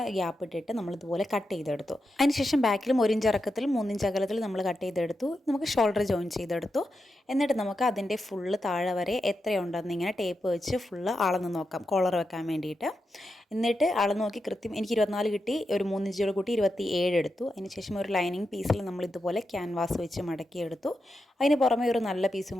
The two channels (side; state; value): both; normal; correlation 0.87